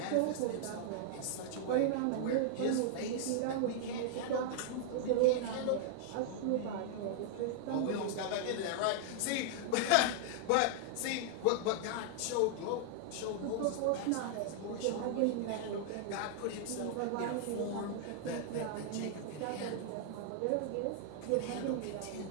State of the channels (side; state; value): both; different; correlation -0.01